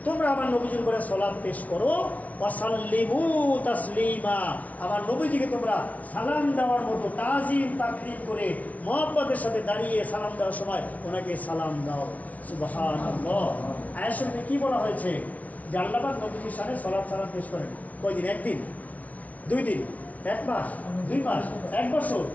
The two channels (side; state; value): right; late; 0.070 ms